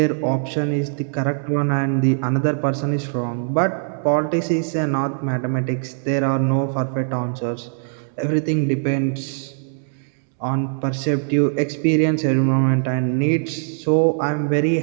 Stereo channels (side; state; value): left; silent; 65 dB below the other